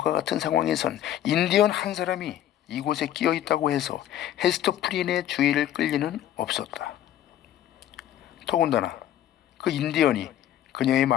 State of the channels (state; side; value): quieter; right; 11.8 dB